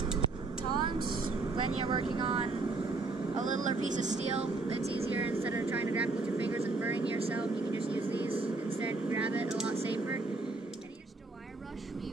Tongs, when you're working on a littler piece of steel, it's easier. Instead of trying to grab it with your fingers and burning yourself, you can just use these instead and grab it, a lot safer. And here's just a wire brush we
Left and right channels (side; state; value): left; quieter; 3.5 dB